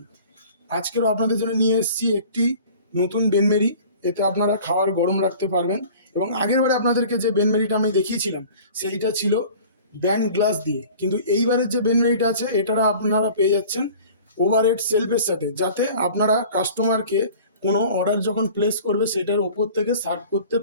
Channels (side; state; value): both; inverted; correlation -0.44